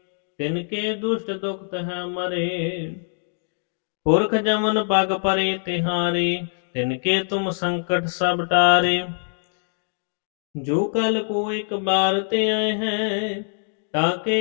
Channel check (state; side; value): silent; right; digital silence